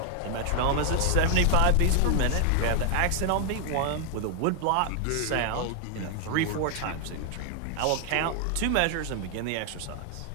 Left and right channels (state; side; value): different; both; correlation 0.00